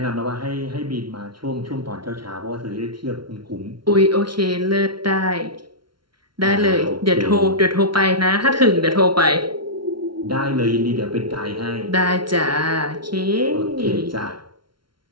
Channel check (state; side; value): late; left; 0.73 ms